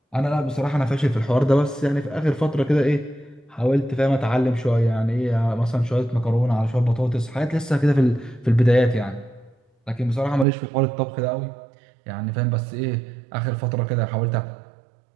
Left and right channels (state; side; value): drops out; left; at 10.5 s